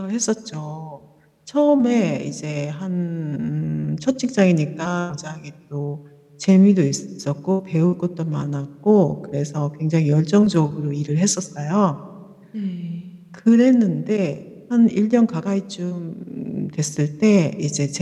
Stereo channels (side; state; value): both; identical; correlation 1.00